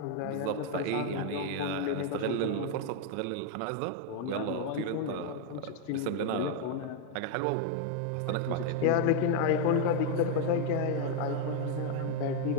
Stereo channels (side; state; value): both; different; correlation 0.00